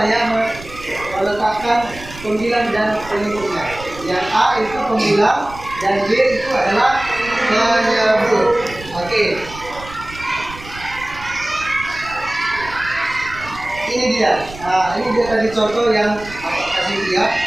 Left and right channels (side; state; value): right; noise; rumble, 16 dB below the sound